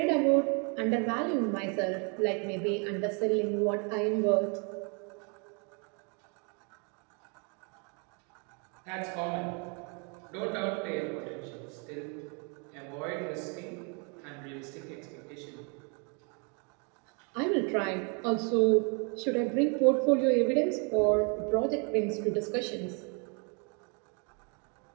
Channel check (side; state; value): left; quieter; 35.9 dB